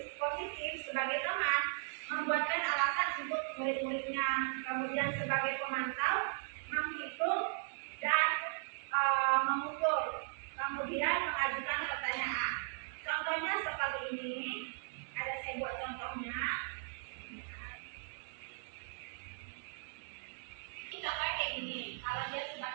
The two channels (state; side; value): silent; left; 53 dB below the other